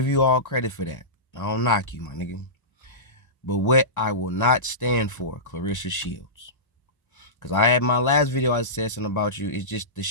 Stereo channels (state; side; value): late; right; 1.0 ms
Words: you all credit for that. I don't knock you, my nigga. But what I will not stand for, Claressa Shields. Because I had my last video, I said something about you. It's just the